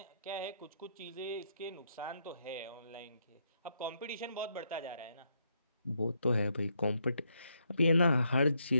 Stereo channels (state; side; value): inverted; both; correlation -0.77